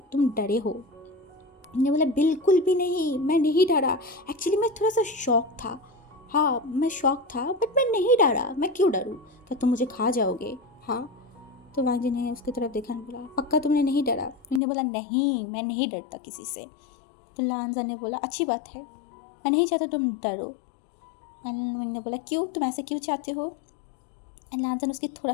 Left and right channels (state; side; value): drops out; right; at 14.6 s